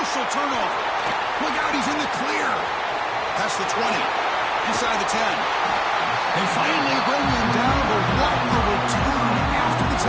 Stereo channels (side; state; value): both; identical; correlation 1.00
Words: turnover. Look out, he's in the clear. Past the 20, inside the 10. They finally bring him down, but what a return after the